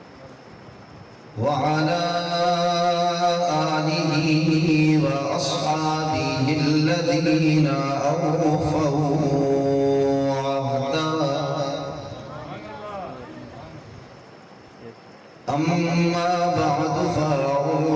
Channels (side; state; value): both; identical; correlation 1.00